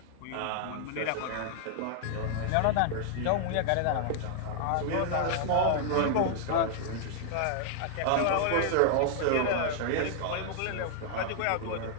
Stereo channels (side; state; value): both; different; correlation 0.00